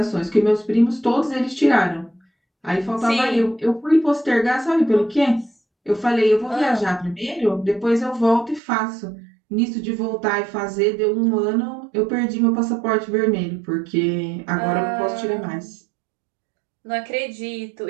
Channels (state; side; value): drops out; left; at 8.6 s